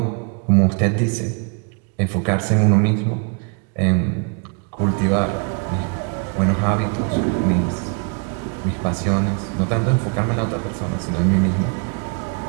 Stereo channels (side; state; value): left; quieter; 36.2 dB